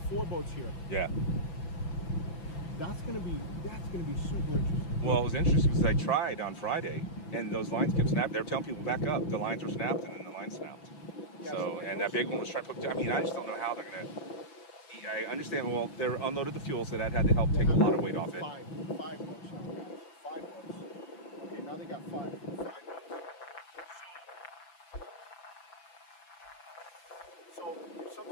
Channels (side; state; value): right; late; 6.0 ms